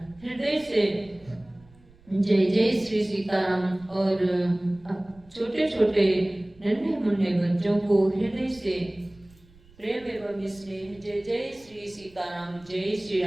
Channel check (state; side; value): noise; right; rumble, 27 dB below the sound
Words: हृदय से जय जय श्री सीताराम और छोटे छोटे नन्हे मुन्ने बच्चों को हृदय से प्रेम एवं स्नेह जय जय श्री सीताराम, जय श्री